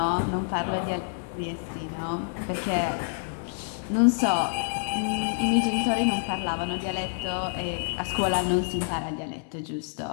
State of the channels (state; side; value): silent; right; digital silence